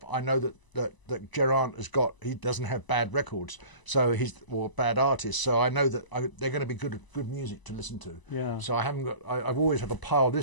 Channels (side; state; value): right; late; 1.0 ms